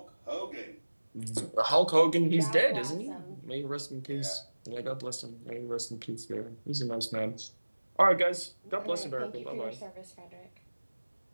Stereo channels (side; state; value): both; inverted; correlation -1.00